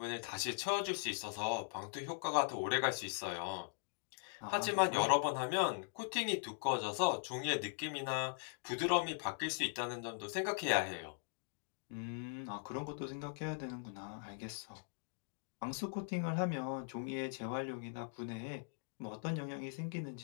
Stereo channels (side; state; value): right; silent; digital silence